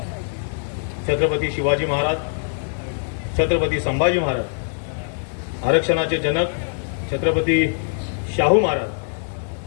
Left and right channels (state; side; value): silent; right; digital silence